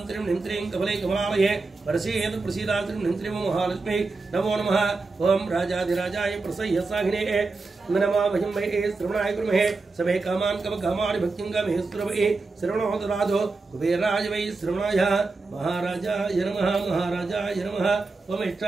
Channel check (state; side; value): quieter; left; 3.8 dB